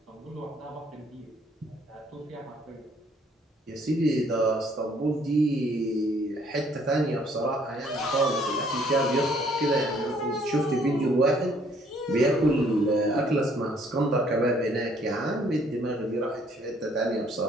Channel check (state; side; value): normal; both; correlation 0.63